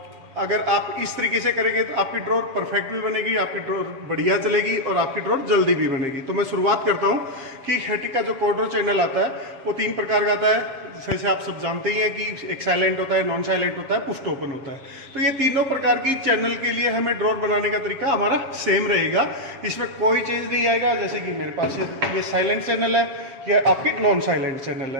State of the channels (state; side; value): late; left; 7.5 ms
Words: अगर आप इस तरीके से करेंगे तो आपकी ड्रॉर परफेक्ट भी बनेगी, आपकी ड्रॉर बढ़िया चलेगी और आपकी ड्रॉर जल्दी भी बनेगी। तो मैं शुरुआत करता हूँ कि हैटिक का जो कोड्रो चैनल आता है वो 3 प्रकार का आता है। जैसे आप सब जानते ही हैं कि एक साइलेंट होता है, नॉन साइलेंट होता है, पुश ओपन होता है। तो ये तीनों प्रकार की चैनल के लिए हमें ड्रॉर बनाने का तरीका हमारा सेम रहेगा, इसमें कोई चेंज नहीं आएगा। जैसे कि मेरे पास ये साइलेंट चैनल है, या आपकी नॉन साइलेंट चैनल